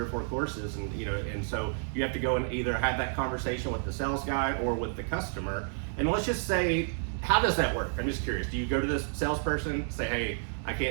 4 courses, and you know, and so you have to go and either have that conversation with the sales guy or with the customer. And let's just say, how does that work? I'm just curious. Do you go to this salesperson, say, hey, I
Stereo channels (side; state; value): left; silent; 58 dB below the other